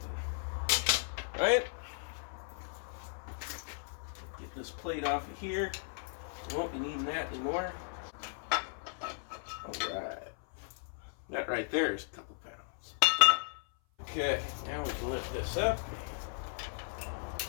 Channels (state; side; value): silent; right; 54 dB below the other